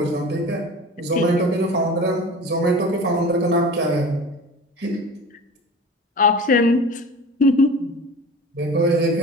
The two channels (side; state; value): both; normal; correlation 0.37